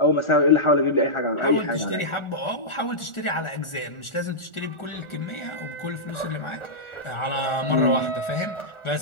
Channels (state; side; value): late; right; 1.4 ms